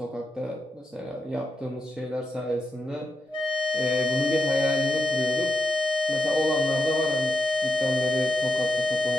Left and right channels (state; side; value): normal; both; correlation 0.86